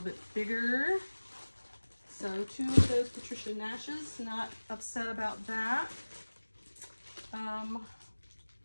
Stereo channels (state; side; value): inverted; both; correlation -1.00